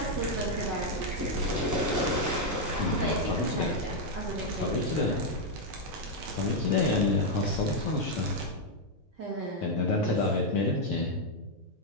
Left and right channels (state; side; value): normal; both; correlation 0.00